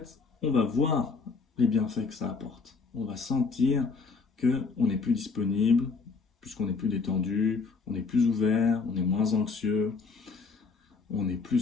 on va voir les bienfaits que ça apporte. On va sentir qu'on est plus disponible, puisqu'on est plus détendu, on est plus ouvert, on est moins anxieux,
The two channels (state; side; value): quieter; right; 4.6 dB